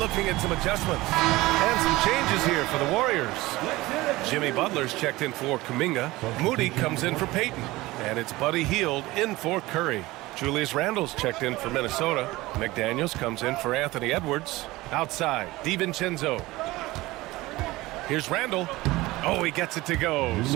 at some adjustments. And some changes here for the Warriors. Jimmy Butler's checked in for Kuminga. Moody comes in for Payton. And it's Buddy Hield in for Curry. Julius Randle's checked in for Minnesota. McDaniels comes in for Anthony Edwards. Outside, DiVincenzo. Here's Randle. Oh, he gets it to go.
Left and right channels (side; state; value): left; quieter; 19.5 dB